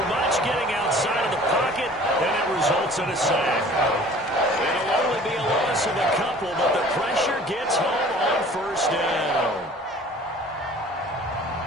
much, getting outside of the pocket, and it results in a sack. It'll only be a loss of a couple, but the pressure gets home on 1st down.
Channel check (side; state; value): both; normal; correlation 0.49